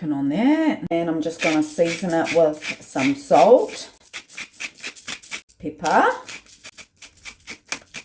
on there, and I'm just going to season it with some salt, pepper,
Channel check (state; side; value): identical; both; correlation 1.00